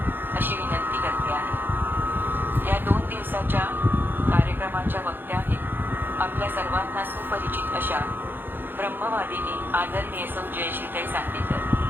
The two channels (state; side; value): late; left; 0.097 ms